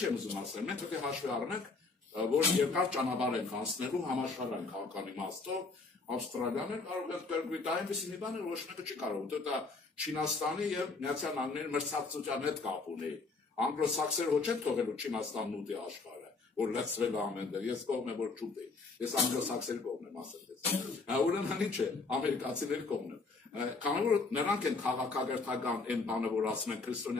եմ ուզում ասել, մենք պետք է հաշվի առնենք, որ երկար ճանապարհ ենք անցնելու համաշխարհային քաղաքական իմաստով, Ավստրալիան էլ կարող է կրկնի դա այնպես մի բան է, ոչ մեկը չի կարող, դա Չինաստանի եւ Միացյալ Նահանգների մրցակցության հետ կապ ունի։ Անգլոսաքսերը ոչ են թողելու Չինաստանն ուտի աշխարհը, որ լցրել է ամենտեղ, ես կողմ եմ որ չուտի, ես անգլոսաքսերի կողմ եմ ասել ես։ Ուրեմն ինչ է, ամերիկացիների կողմն եմ։ Քանի որ նրանք են քաղաքակրթական այն բանը, որ ասում են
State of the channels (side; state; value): right; quieter; 4.0 dB